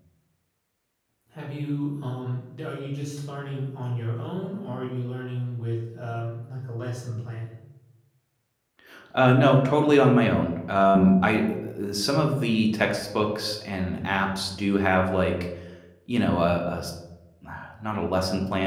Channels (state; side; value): identical; both; correlation 1.00